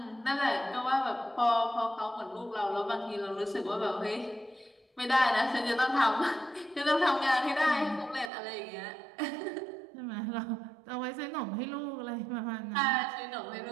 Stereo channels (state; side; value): drops out; left; at 8.3 s